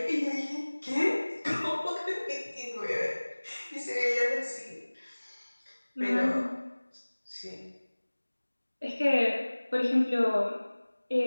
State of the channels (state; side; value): inverted; both; correlation -1.00